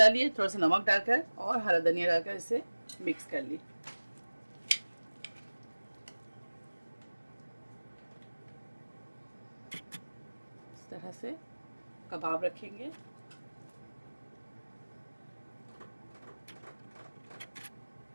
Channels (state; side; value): inverted; both; correlation -1.00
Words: थोड़ा सा नमक डालकर और हरा धनिया डालकर इसे मिक्स कर ली। इस तरह से कबाब रखेंगे।